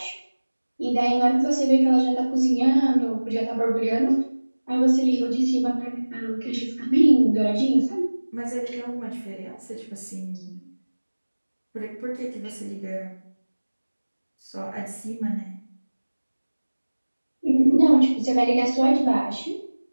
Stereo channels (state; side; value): inverted; both; correlation -1.00